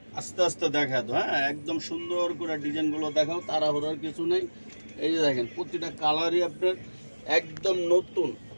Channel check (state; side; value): inverted; both; correlation -1.00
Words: আস্তে আস্তে দেখা তো। হ্যাঁ, একদম সুন্দর করে ডিজাইনগুলো দেখাও, তাড়াহুড়ার কিছু নেই। এই যে দেখেন প্রতিটা কালারই আপনার একদম নতুন।